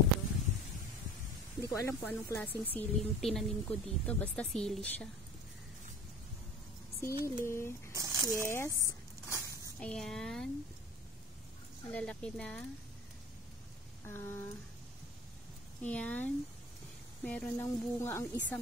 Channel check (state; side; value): normal; both; correlation 0.40